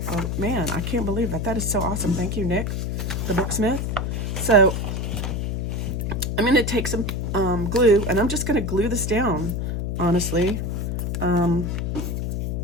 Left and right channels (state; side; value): noise; left; hum, 1 dB below the sound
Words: Oh man, I can't believe that. That is so awesome. Thank you, Nick, the Booksmith. So I'm going to take some glue, and I'm just going to glue this down, honestly.